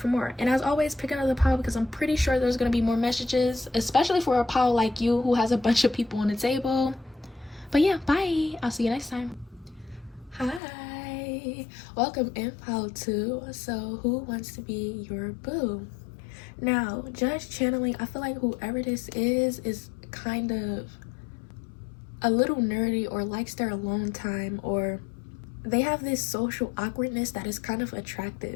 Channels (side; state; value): right; drops out; at 10.6 s